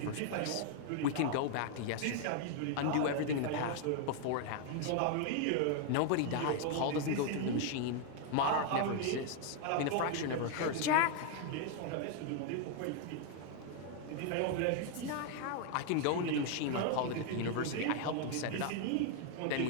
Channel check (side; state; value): both; different; correlation 0.00